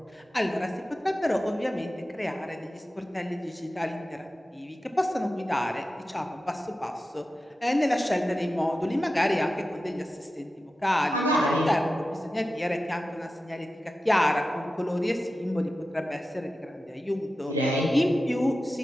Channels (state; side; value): normal; both; correlation 0.93